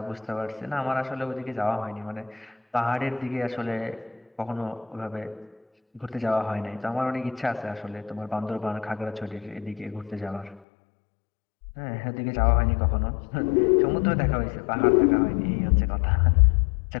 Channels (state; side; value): drops out; right; at 10.6 s